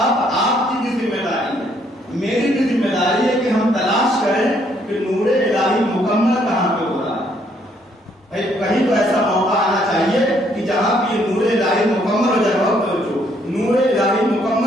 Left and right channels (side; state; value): both; normal; correlation 0.68